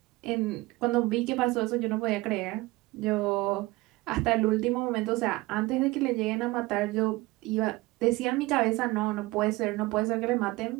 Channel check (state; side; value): quieter; left; 20.9 dB